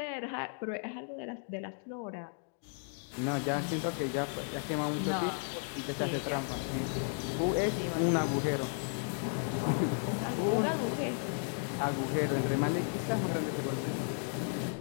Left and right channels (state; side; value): silent; right; 55 dB below the other